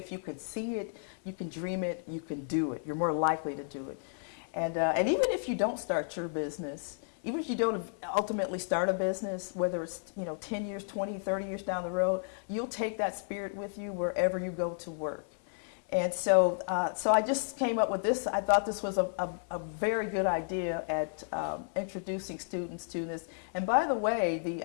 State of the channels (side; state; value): right; silent; digital silence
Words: you can see it, you can dream it, you can do it. You're more likely to do it. And even if you don't start your business, even if you don't ultimately start a business, whether it's 10 years, 20, 30 years down the road, you'll take that spirit with you wherever you go to work. And so I just came up with this. I thought this was a very good idea at introducing students to this. And by the way,